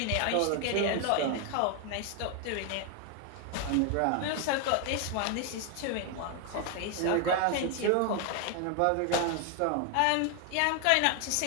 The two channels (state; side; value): different; both; correlation 0.01